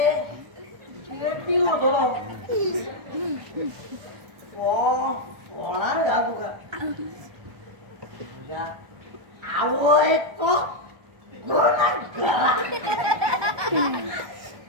पिवो थोडो होणार का तुका तुझ्या आवो एक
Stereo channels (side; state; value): left; late; 1.2 ms